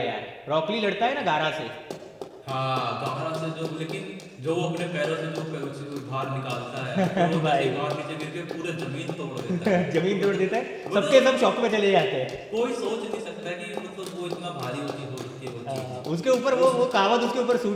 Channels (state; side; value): identical; both; correlation 1.00